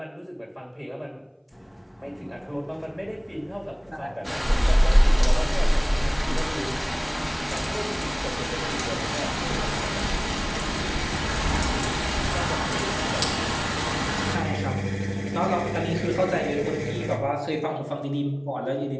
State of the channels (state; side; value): identical; both; correlation 1.00